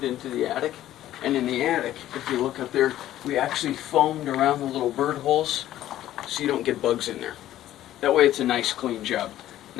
into the attic, and in the attic, if you look up there, we actually foamed around the little bird holes so you don't get bugs in there. That way it's a nice clean job.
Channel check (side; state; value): right; quieter; 13.2 dB